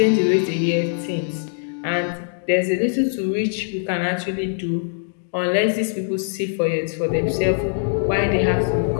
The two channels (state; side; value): silent; right; digital silence